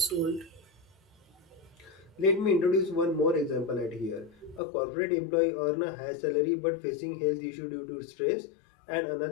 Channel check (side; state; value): right; drops out; at 4.6 s